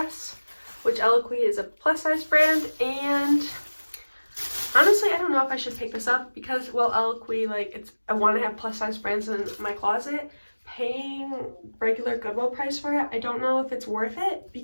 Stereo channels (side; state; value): both; inverted; correlation -1.00